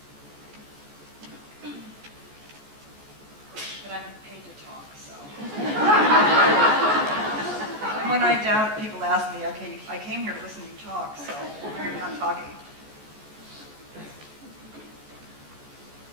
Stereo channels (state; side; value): late; left; 14 ms